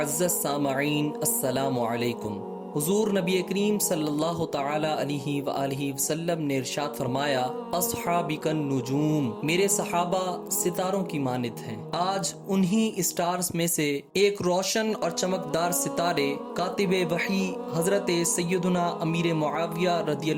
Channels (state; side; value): identical; both; correlation 1.00